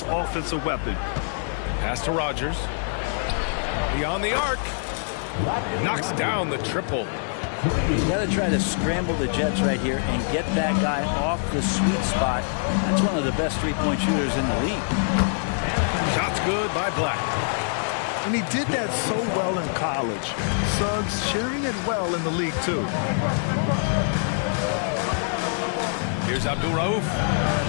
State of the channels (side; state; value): right; silent; digital silence